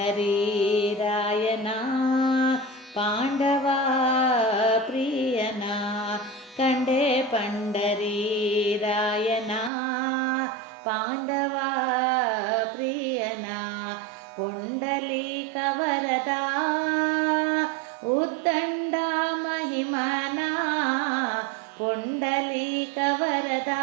ರಾಯನ ಪಾಂಡವ ಪ್ರಿಯನ ಕಂಡೆ ಪಂಡರಿ ರಾಯನ ಪಾಂಡವ ಪ್ರಿಯನ ಪುಂಡಲೀಕ ವರದ ಉದ್ದಂಡ ಮಹಿಮನ ಪುಂಡಲೀಕ ವರದ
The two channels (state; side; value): drops out; left; at 9.7 s